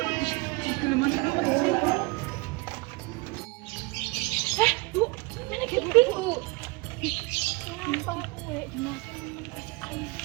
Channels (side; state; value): left; quieter; 25.4 dB